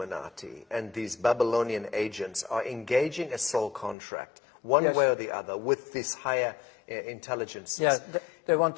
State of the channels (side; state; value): right; drops out; at 4.0 s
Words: and these Babylonian agents are engaging a soul contract one way or the other with these higher intelligences. Yeah, they want